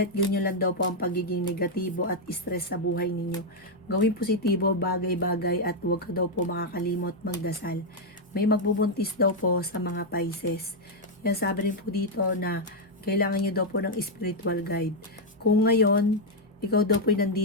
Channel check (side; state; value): both; normal; correlation 0.00